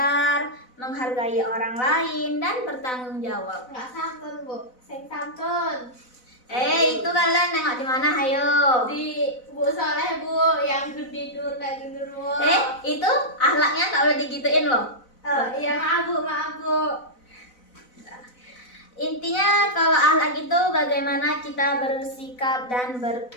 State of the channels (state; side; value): late; right; 4.0 ms